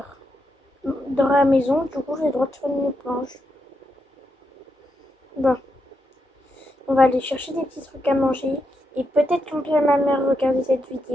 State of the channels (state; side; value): normal; both; correlation 0.83